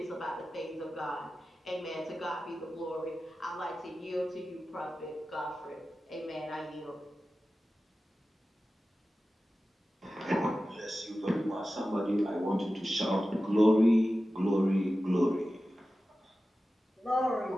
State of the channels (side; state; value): both; normal; correlation 0.94